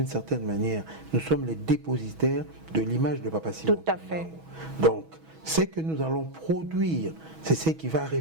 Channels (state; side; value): late; left; 6.2 ms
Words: certaine manière, nous sommes les dépositaires de l'image de Papa Simo Kimbangu. Tout à fait. Donc, ce que nous allons produire, c'est ce qui va